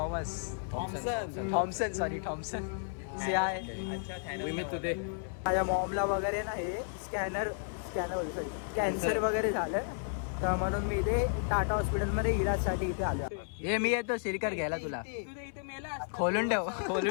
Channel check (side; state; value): right; silent; 56 dB below the other